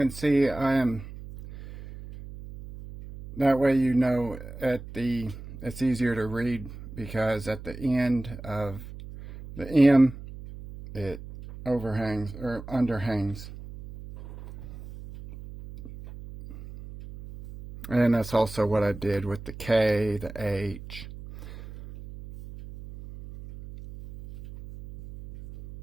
see I am, that way you know it's easier to read, because at the end of the M it overhangs or underhangs. And that's also what I did with the K, the H.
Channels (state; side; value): noise; right; hum, 13 dB below the sound